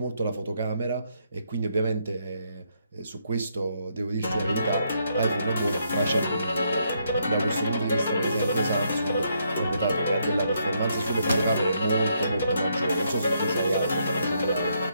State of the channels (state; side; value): inverted; both; correlation -0.75